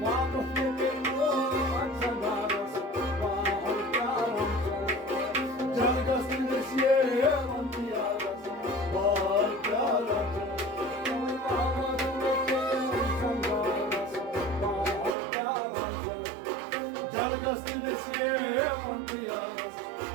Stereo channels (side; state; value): left; drops out; at 15.2 s